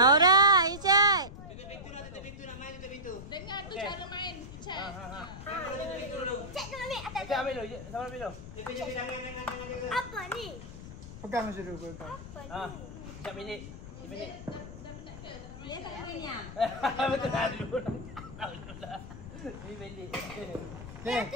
Isyad. Tutup pintu nak main tutup pintu. Dengar tu cara main. Isyad. Cek tu ambil atas. Okey, ambil dulu. Sama ambil dulu. Apa ni? Pegang macam tu. Sekejap minit. Dia tak nak main yang. Betul dah dulu. Ni belik. Okey.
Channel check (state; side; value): noise; left; rumble, 12 dB below the sound